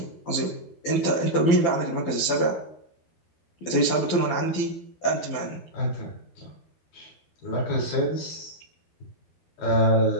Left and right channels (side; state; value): right; late; 12 ms